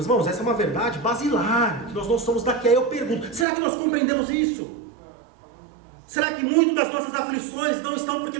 irmãos, essa é uma verdade basilar, que nós não somos daqui. Aí eu pergunto, será que nós compreendemos isso? Será que muitas das nossas aflições não estão porque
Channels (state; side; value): drops out; left; at 3.5 s